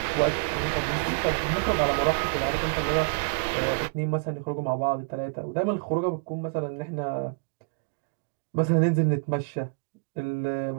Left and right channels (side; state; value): left; quieter; 35.0 dB